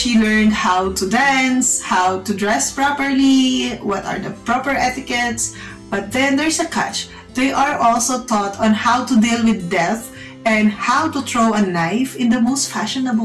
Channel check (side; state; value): both; identical; correlation 1.00